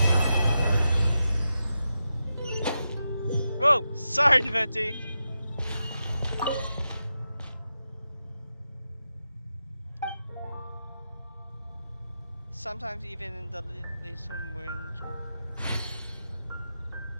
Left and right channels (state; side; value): inverted; both; correlation -0.89